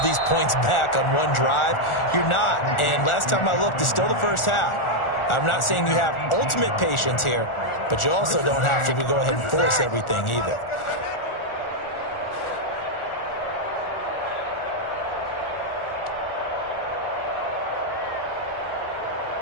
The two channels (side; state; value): right; late; 1.4 ms